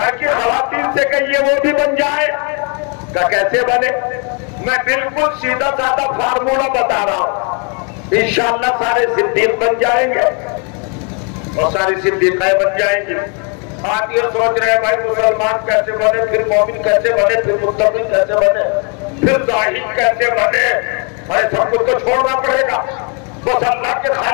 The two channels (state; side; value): quieter; right; 36.9 dB